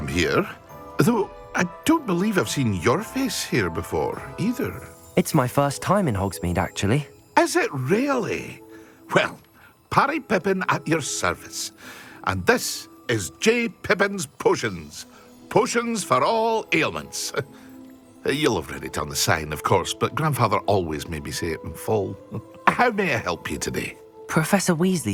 here. Though I don't believe I've seen your face here before, either. It's my first time in Hogsmeade, actually. Is it really? Well, Parry Pippin at your service. And this is J. Pippin's Potions. Potions for all ailments. You'll have read it on the sign, of course, but Grandfather always made me say it in full. How may I help you today? Professor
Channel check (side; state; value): both; identical; correlation 1.00